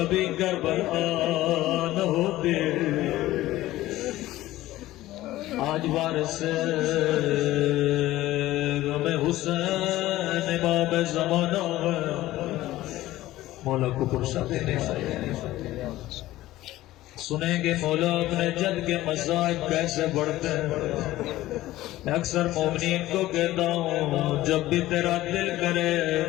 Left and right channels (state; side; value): quieter; right; 16.0 dB